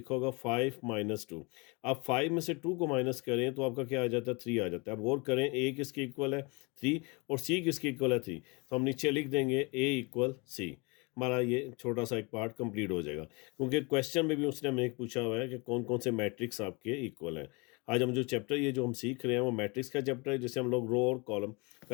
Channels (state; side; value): quieter; right; 28.9 dB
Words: होगा 5 - 2। आप 5 में से 2 को माइनस करें तो आपका क्या आ जाता है, 3 आ जाता है। अब गौर करें, ए किसके इक्वल है 3, और सी किसके इक्वल है 3। तो हम नीचे लिख देंगे ए इक्वल सी। हमारा ये छोटा सा एक पार्ट कंप्लीट हो जाएगा, क्योंकि क्वेश्चन में भी उसने हमें एक पूछा हुआ है कि कौन कौन से मैट्रिक्स आपके इक्वल हैं। आज हम जो चैप्टर ये जो हम सीख रहे हैं वो मैट्रिक्स का चैप्टर है, जिसे हम लोग रो और कॉलम